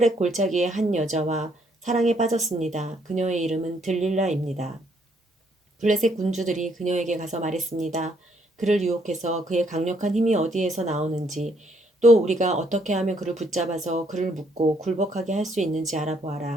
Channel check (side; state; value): both; normal; correlation 0.69